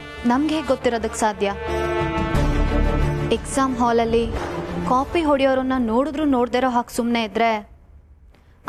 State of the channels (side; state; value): both; identical; correlation 1.00